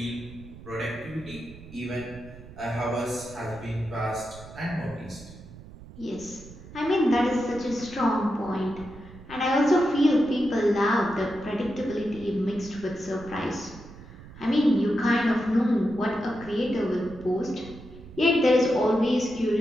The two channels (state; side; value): noise; right; rumble, 17 dB below the sound